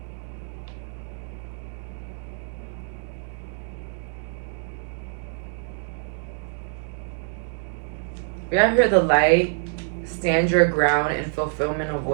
We have here the light, stand your ground, and fulfillment of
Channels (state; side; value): silent; left; digital silence